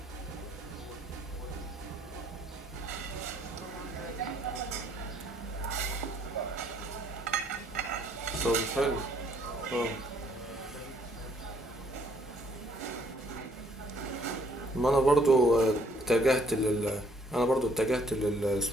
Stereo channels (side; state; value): both; normal; correlation 0.64